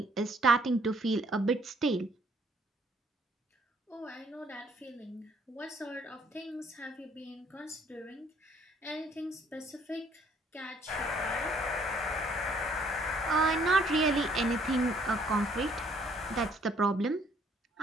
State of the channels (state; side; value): normal; both; correlation 0.63